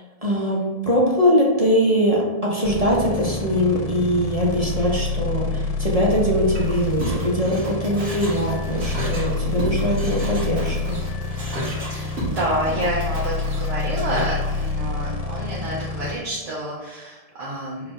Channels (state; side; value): late; left; 1.7 ms